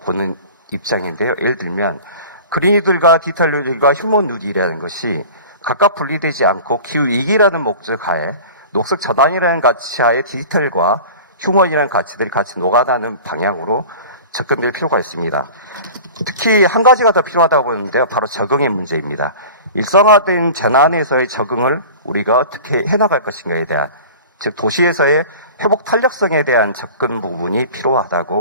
보는 입장인데요. 예를 들면 그린이들과 디지털 뉴딜과 휴먼 뉴딜이라는 것이 각각 분리되지 않고 기후위기라는 목적 하에 녹색 전환이라는 가치 하에 디지털과 휴먼이라는 가치들이 같이 녹아나는 방향으로 접근될 필요가 있습니다. 특히 한 가지가 더 필요하다고 보는데요. 바로 적응의 문제입니다. 일상화된 재난에서의 적응을 우리가 어떻게 해나갈 것인가에 대한, 즉 도시에서의 회복 탄력성에 대한 접근 부분이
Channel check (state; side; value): inverted; both; correlation -0.39